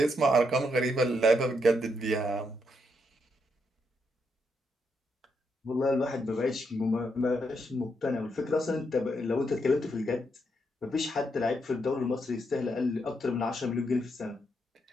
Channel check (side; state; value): both; normal; correlation 0.79